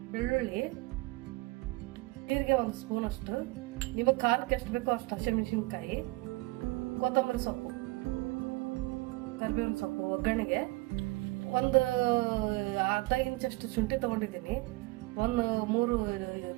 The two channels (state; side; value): quieter; left; 22.6 dB